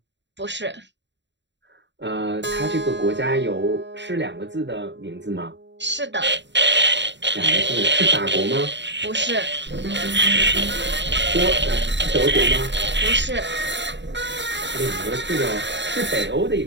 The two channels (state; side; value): late; left; 0.52 ms